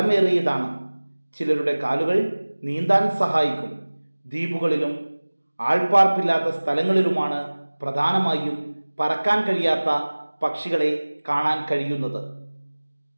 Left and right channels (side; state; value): both; inverted; correlation -1.00